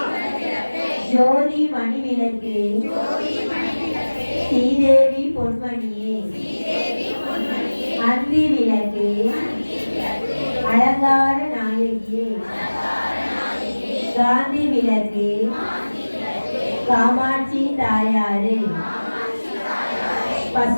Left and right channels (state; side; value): inverted; both; correlation -1.00